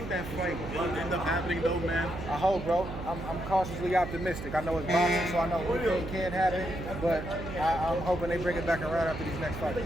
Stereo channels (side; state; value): right; noise; hum, 9 dB below the sound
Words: that fight will end up happening though, man? I hope, bro. I'm cautiously optimistic. I know it's boxing, so I know anything can happen, but I'm hoping they bring it back around after these next fights.